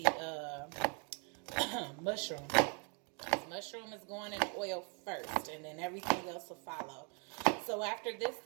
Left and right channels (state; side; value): quieter; left; 37.1 dB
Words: mushroom. Mushroom is going in oil first, and then everything else will follow. So after this,